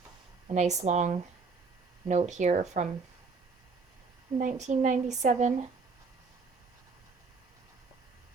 a nice long note here from 1997.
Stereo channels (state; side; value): quieter; left; 4.6 dB